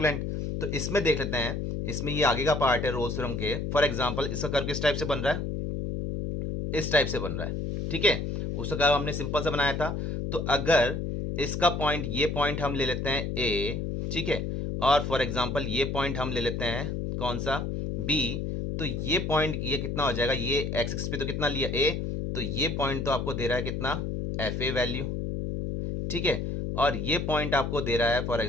तो इसमें देख लेते हैं, इसमें ये आगे का पार्ट है रोल्स थ्योरम के। फॉर एग्जांपल इसका कर्व किस टाइप से बन रहा है, इस टाइप से बन रहा है, ठीक है, उसका कर्व हमने सिंपल सा बनाया था। तो अगर इसका पॉइंट, ये पॉइंट हम ले लेते हैं ए, ठीक है, और फॉर एग्जांपल ये पॉइंट हम ले लेते हैं कौन सा, बी, तो ये पॉइंट ये कितना हो जाएगा, ये एक्स एक्सिस पे तो कितना लिया ए, तो ये पॉइंट तो आपको दे रहा है कितना, एफ ए वैल्यू, ठीक है, और ये पॉइंट आपको दे रहा है फॉर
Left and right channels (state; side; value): noise; left; hum, 3 dB below the sound